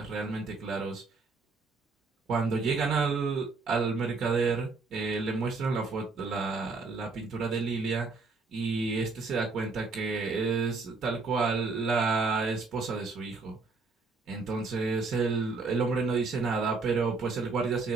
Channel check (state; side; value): quieter; left; 4.0 dB